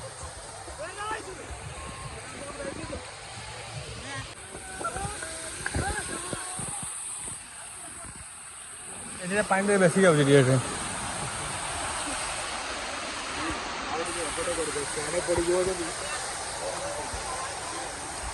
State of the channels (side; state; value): both; identical; correlation 1.00